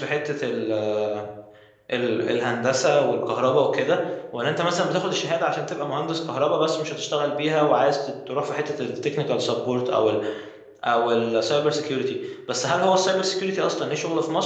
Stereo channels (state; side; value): identical; both; correlation 1.00